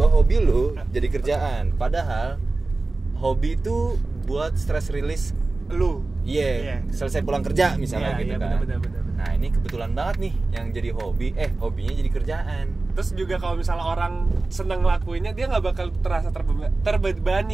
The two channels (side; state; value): left; quieter; 3.3 dB